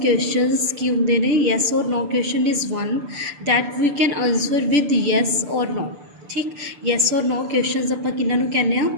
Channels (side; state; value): left; late; 6.8 ms